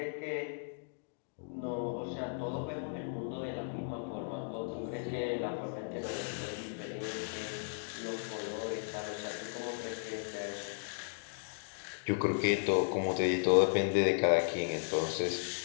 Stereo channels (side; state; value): right; silent; digital silence